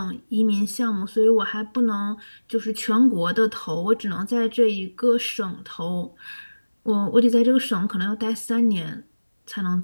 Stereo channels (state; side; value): inverted; both; correlation -1.00